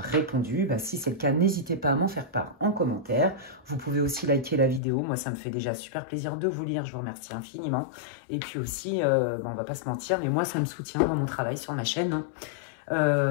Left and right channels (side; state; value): right; drops out; at 4.8 s